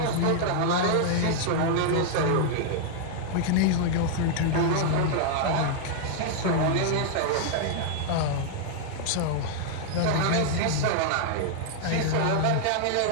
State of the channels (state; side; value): different; both; correlation -0.01